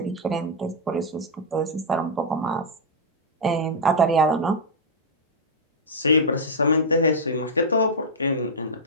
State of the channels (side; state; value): both; normal; correlation -0.05